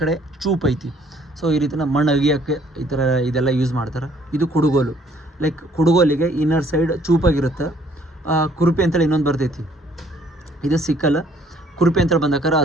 ಕಡೆ ಚೂಪ್ ಐತಿ. ಸೊ ಈ ರೀತಿ ನಮ್ಮ ಮಣ್ಣು ಅಗಿಯೋಕ್ಕೆ ಈ ಥರ ಇದೆಲ್ಲ ಯೂಸ್ ಮಾಡ್ತಾರೆ. ಇದು ಕುಡುಗೋಲು. ಲೈಕ್ ಕುಡುಗೋಲಿಗೆ ಇನ್ನರ್ ಸೈಡ್ ಚೂಪಾಗಿರುತ್ತೆ, ಕುರುಪಿ ಅಂತೇಳಿ ಇನ್ನೊಂದು ಬರ್ತೈತಿ, ಇದು ಸಿಕ್ಕಲ್. ಕುರುಪಿ ಅಂತೇಳಿ ಬಂದಾಗ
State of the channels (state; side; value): normal; both; correlation 0.62